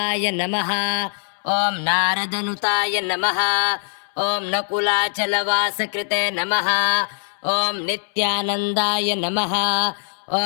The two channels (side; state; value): right; silent; 60 dB below the other